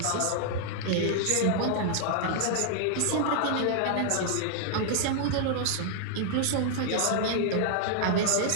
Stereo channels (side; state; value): both; different; correlation -0.01